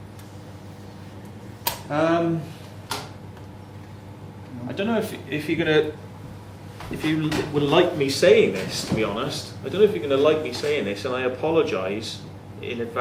I don't know if you're gonna, if you would like me saying this, to be honest. I don't know if you're going to like me saying this, and I apologise in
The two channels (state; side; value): identical; both; correlation 1.00